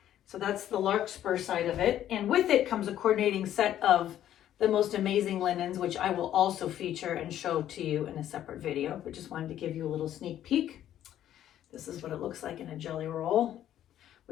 So that's the Larkspur side of it, and with it comes a coordinating set of the most amazing linens, which I will also feature and show to you in a separate video, but just wanted to give you a little sneak peek. This is what it looks like in a jelly roll,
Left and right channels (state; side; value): quieter; right; 11.6 dB